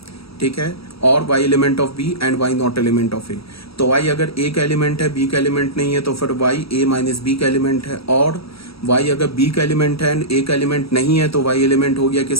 ठीक है, और y element of B and y not element of ए। तो वाई अगर ए का एलिमेंट है बी का एलिमेंट नहीं है तो फिर वाई ए माइनस बी का एलिमेंट है, और वाई अगर बी का एलिमेंट है एंड ए का एलिमेंट नहीं है तो वाई एलिमेंट हो गया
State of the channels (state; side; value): late; right; 0.76 ms